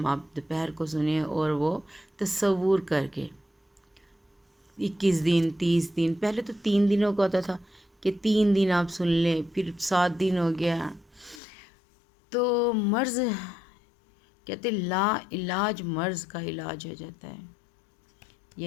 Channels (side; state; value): right; drops out; at 11.4 s